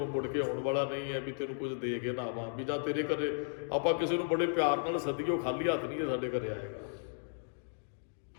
ਮੁੜ ਕੇ ਆਉਣ ਵਾਲਾ ਨਹੀਂ ਹੈ ਵੀ ਤੈਨੂੰ ਕੁਝ ਦੇ ਕੇ ਨਾ ਆਵਾਂ। ਵੀ ਜਾਂ ਤੇਰੇ ਘਰੇ ਆਪਾਂ ਕਿਸੇ ਨੂੰ ਬੜੇ ਪਿਆਰ ਨਾਲ ਸੱਦੀਏ, ਉਹ ਖਾਲੀ ਹੱਥ ਨਹੀਂ ਹੈ ਸਾਡੇ ਘਰੇ ਆਏਗਾ,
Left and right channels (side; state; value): right; silent; digital silence